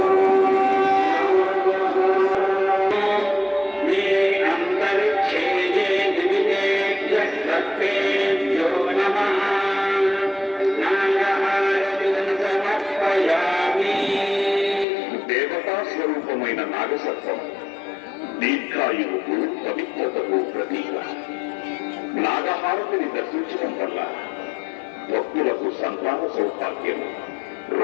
స్వరూపమైన నాగసర్పం దీర్ఘాయువుకు పవిత్రతకు ప్రతీక. నాగహారతిని దర్శించడం వల్ల భక్తులకు సంతాన సౌభాగ్యము,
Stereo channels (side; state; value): right; drops out; at 14.9 s